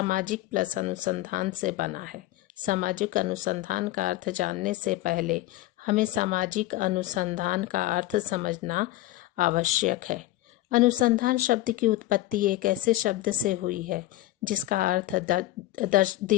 प्लस अनुसंधान से बना है। सामाजिक अनुसंधान का अर्थ जानने से पहले हमें सामाजिक अनुसंधान का अर्थ समझना आवश्यक है। अनुसंधान शब्द की उत्पत्ति एक ऐसे शब्द से हुई है जिसका अर्थ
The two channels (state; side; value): quieter; right; 16.7 dB